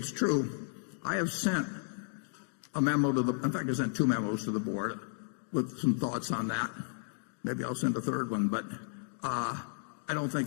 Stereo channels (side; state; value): right; silent; digital silence